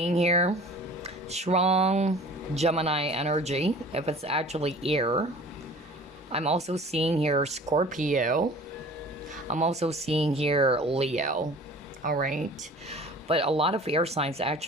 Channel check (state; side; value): normal; both; correlation 0.45